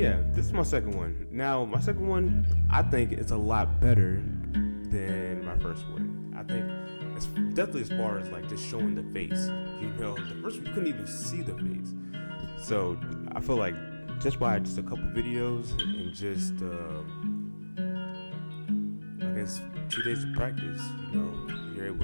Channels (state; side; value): inverted; both; correlation -1.00